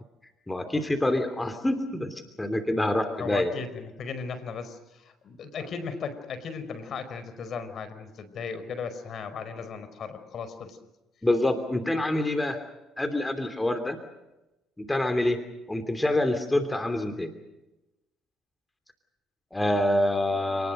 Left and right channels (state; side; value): normal; both; correlation 0.89